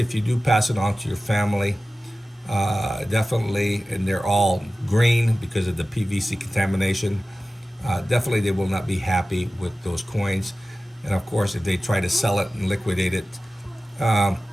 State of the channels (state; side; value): normal; both; correlation 0.95